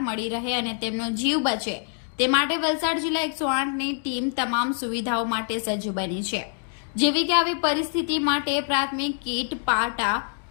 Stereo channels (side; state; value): right; silent; digital silence